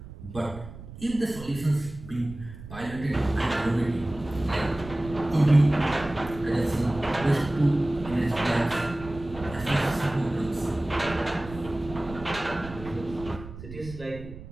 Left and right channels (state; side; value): noise; right; rumble, 14 dB below the sound